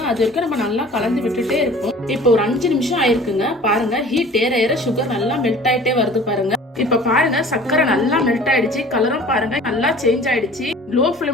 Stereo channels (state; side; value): normal; both; correlation 0.46